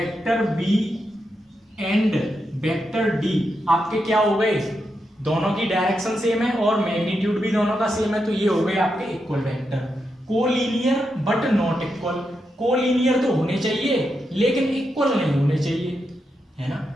B and vector D आपके क्या हो गए? दोनों की डायरेक्शन सेम है और मैग्नीट्यूड भी दोनों का सेम है, तो ये हो गए आपके equal vector. Collinear but not equal, collinear तो होने चाहिए लेकिन इक्वल नहीं होने चाहिए, है ना।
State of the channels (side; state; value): both; normal; correlation 0.85